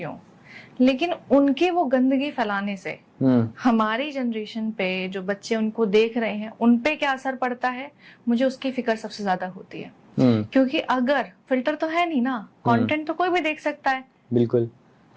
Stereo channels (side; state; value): both; identical; correlation 1.00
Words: हूँ। लेकिन उनके वो गंदगी फैलाने से हमारी जनरेशन पे जो बच्चे उनको देख रहे हैं, उन पे क्या असर पड़ता है, मुझे उसकी फिक्र सबसे ज्यादा होती है। क्योंकि अगर फिल्टर तो है नहीं ना, कंटेंट तो कोई भी देख सकता है, बिल्कुल